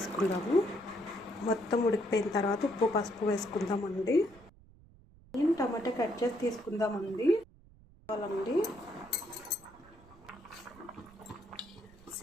మొత్తం ఉడికిపోయిన తర్వాత ఉప్పు పసుపు వేసుకుందామండి. టమాటా కట్ చేసి తీసుకుందామండి.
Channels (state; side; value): noise; right; rumble, 24 dB below the sound